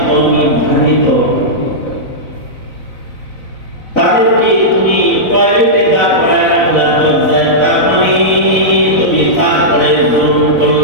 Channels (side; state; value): right; late; 4.0 ms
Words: নির্ধারিত, তাদেরকে তুমি টয়লেটে দাঁড় করায় রাখলা দরজায়, তার মানে তুমি তারপরে জুলুম